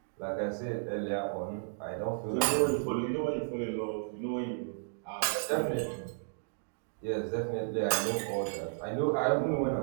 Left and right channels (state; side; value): silent; left; digital silence